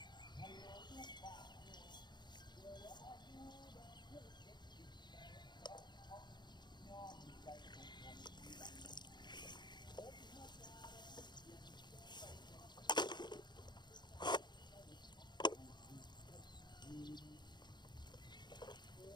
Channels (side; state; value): right; late; 0.21 ms